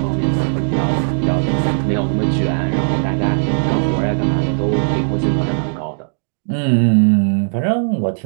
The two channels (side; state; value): left; silent; digital silence